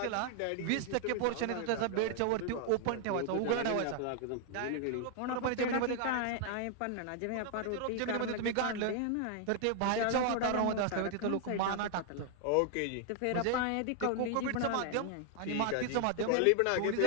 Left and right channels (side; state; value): both; different; correlation 0.00